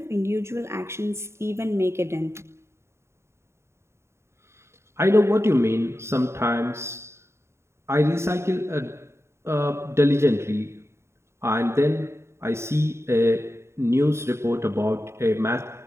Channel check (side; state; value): left; late; 0.13 ms